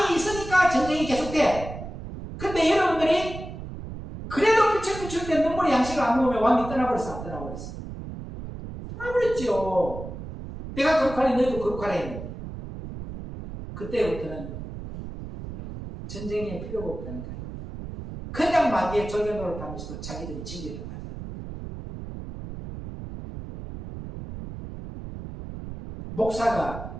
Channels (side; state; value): right; noise; rumble, 10 dB below the sound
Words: 있으니까 전쟁이 계속돼. 근데 여러분들이 그래도 비출 때 눈물의 양식을 안 먹으면 왕이 떠나버렸어 안 떠나버렸어? 떠나버렸죠. 내가 거룩하니 너희도 거룩하라 했는데 그때부터는 전쟁에 필요가 없다니까요. 그냥 마귀의 절개도를 타면서도 자기들이 진리라고 하잖아.